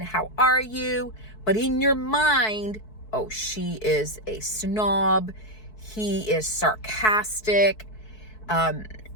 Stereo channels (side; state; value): right; late; 4.6 ms